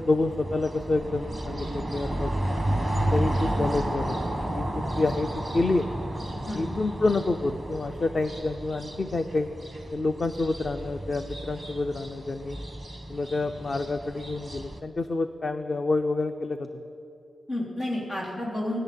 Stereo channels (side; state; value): both; normal; correlation 0.93